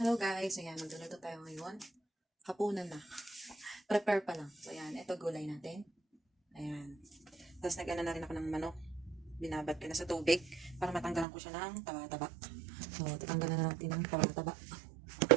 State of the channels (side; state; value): left; drops out; at 11.2 s